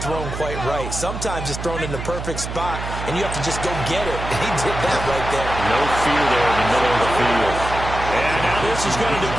thrown quite right. Sometimes it's thrown in the perfect spot, and you have to just go get it. He did that right there. No fear there in the middle of the field. And now this is going to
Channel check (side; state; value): right; noise; hum, 7 dB below the sound